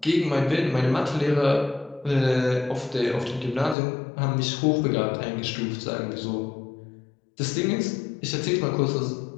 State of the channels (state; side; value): drops out; right; at 3.8 s